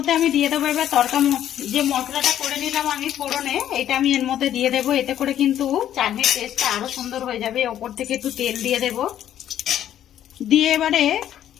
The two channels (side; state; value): right; quieter; 11.1 dB